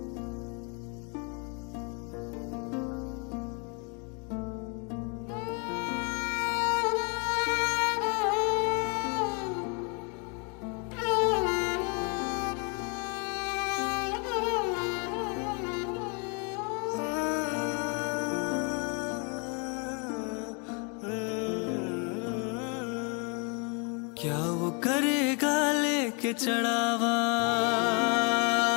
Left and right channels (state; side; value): quieter; right; 35.2 dB